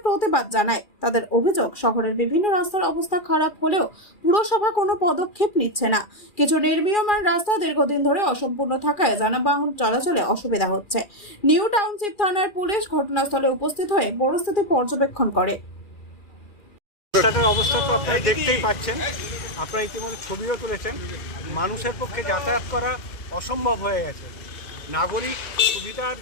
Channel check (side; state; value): right; late; 2.4 ms